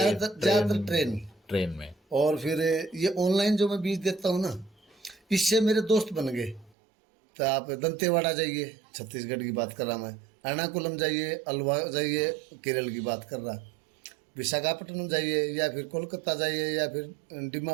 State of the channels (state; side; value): drops out; left; at 6.7 s